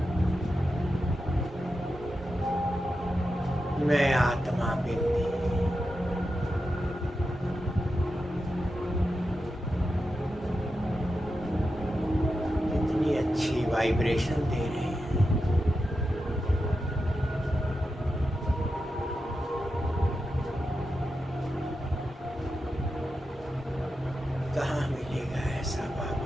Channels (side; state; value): both; normal; correlation 0.89